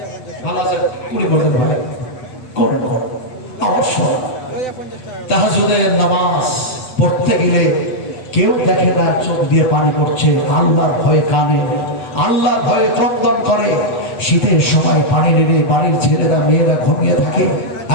ভালো আছে? কুড়ি পড়তেন ভাই, করুন করুন অবশ্যই। তাহাজ্জুদের নামাজ পড়তে গেলে কেউ দেখে না, চোখ দিয়ে পানি পড়ছে, আল্লাহর ভয়ে কানে, আল্লাহর ভয়ে ক্রন্দন করে। শীতের সময় পানি নেড়ে বাড়ির ছেলেরা মেয়েরা ঘুমিয়ে থাকে।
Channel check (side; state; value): right; late; 8.3 ms